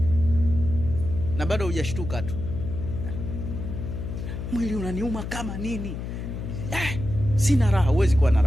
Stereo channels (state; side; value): noise; left; hum, 6 dB below the sound